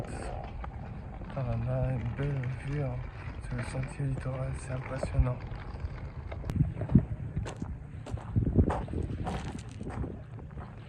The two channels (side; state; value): both; identical; correlation 1.00